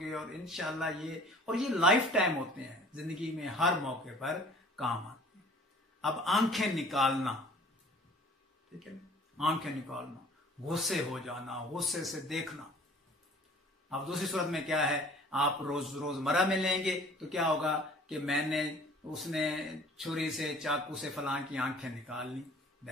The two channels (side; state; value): both; normal; correlation 0.50